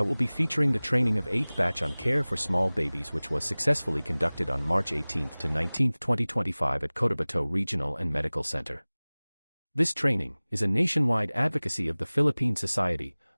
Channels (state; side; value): inverted; both; correlation -1.00